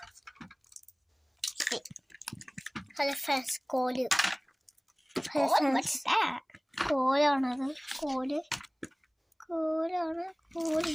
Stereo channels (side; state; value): both; identical; correlation 1.00